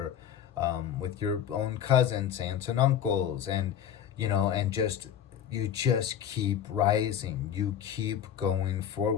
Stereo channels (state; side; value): quieter; right; 9.5 dB